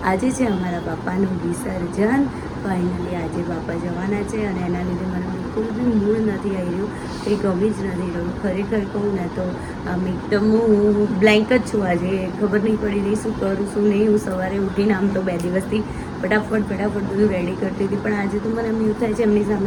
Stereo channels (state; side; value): identical; both; correlation 1.00